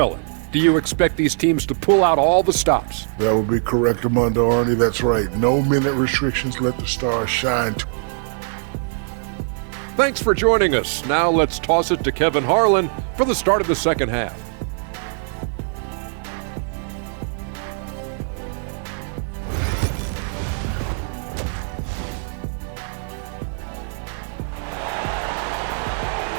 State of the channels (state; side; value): silent; left; digital silence